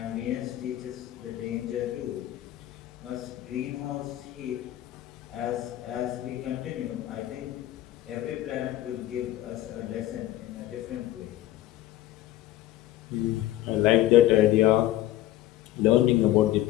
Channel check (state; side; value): quieter; right; 14.4 dB